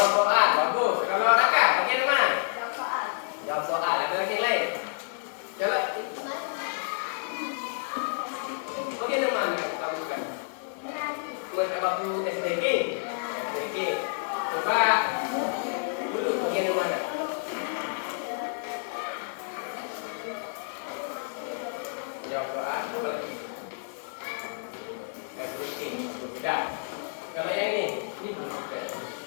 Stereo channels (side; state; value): right; silent; digital silence